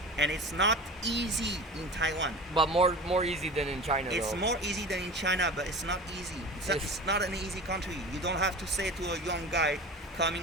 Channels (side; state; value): both; normal; correlation 0.34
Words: And it's not easy in Taiwan. But more easy than in China. It's though. more easy than in China, but it's not easy. It's not an easy country. You don't have to say to a young guy